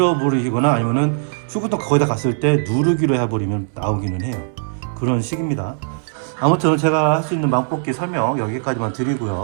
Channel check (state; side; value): silent; left; digital silence